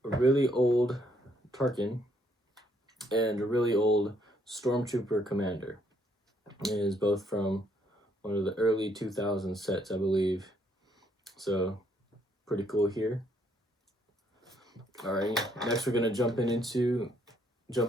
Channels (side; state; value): both; normal; correlation 0.70